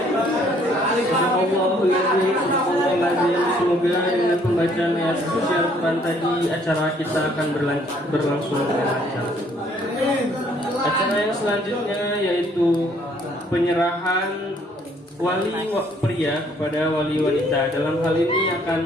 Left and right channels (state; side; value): normal; both; correlation 0.63